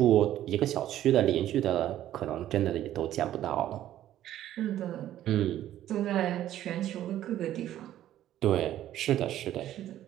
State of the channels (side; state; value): left; quieter; 12.5 dB